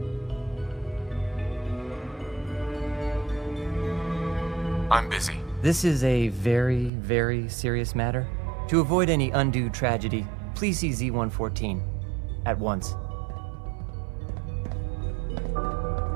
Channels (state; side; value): drops out; left; at 6.9 s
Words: I'm busy. This is a very, very serious matter. To avoid any undue tragedy, please see Z-114 at once.